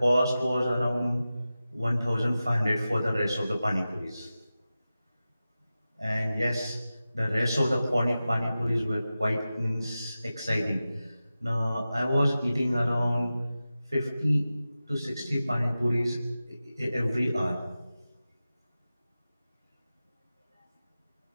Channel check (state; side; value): inverted; both; correlation -0.94